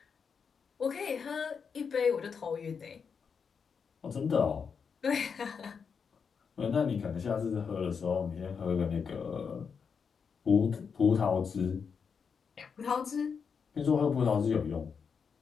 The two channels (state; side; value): quieter; right; 6.1 dB